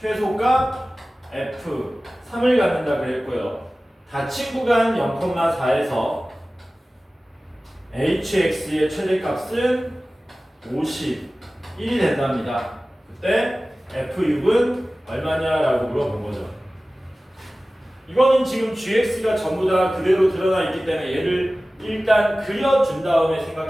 최소값 f 3을 갖는다 그랬고요. 닫힌 구간 0,4에서 hx의 최대값은 51이 된답니다. 그때 f6은 얼마냐라고 물어본 거죠. 이거는 지금 gx가 전부 다 그대로 드러나 있기 때문에 얘를 일단 그려준 다음에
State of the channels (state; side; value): normal; both; correlation 0.97